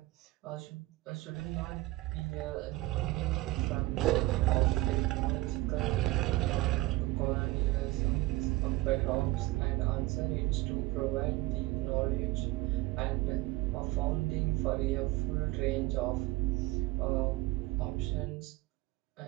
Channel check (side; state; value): left; quieter; 19.8 dB